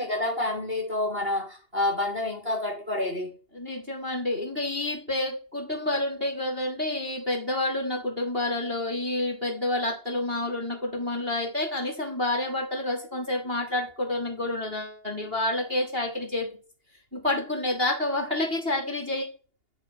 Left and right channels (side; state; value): left; late; 2.8 ms